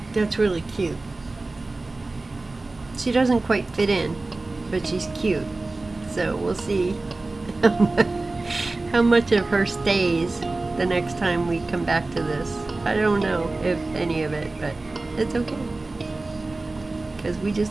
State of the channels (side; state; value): left; quieter; 3.2 dB